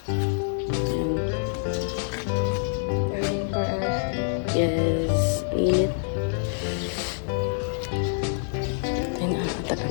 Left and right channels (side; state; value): right; silent; digital silence